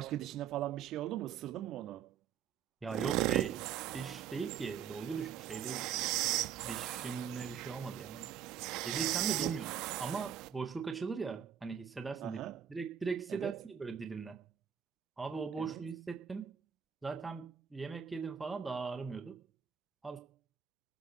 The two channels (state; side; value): quieter; left; 8.4 dB